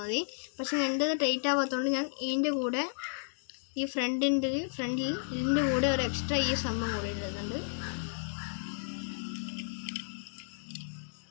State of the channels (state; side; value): silent; right; digital silence